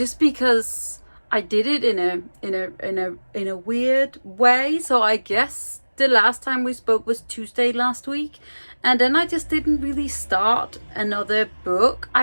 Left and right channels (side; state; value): both; inverted; correlation -1.00